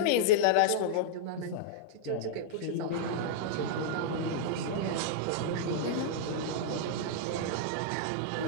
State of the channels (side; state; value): both; different; correlation -0.02